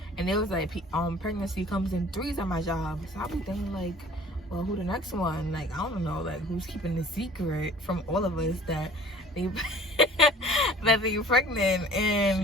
and it was like pregnancy comes in 3s at my job. So I be thinking like, well, who the next one? Like, I don't know, like who's keeping the secret from all of us that they that they're pregnant and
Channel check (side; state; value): both; normal; correlation 0.48